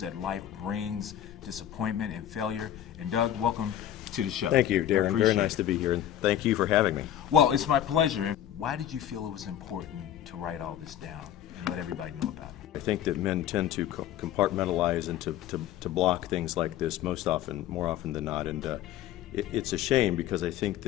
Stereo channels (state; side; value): quieter; right; 11.2 dB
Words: life brings, disappointment and failure. And Doug, welcome to the show. Thank you, Darren. Very nice to be here, and thank you for having me. Well, it's my pleasure. And why did you feel it was important to write all this down and let everybody know about it? I think that men tend to compartmentalize and to block things like this more often than not, and it's a shame because I think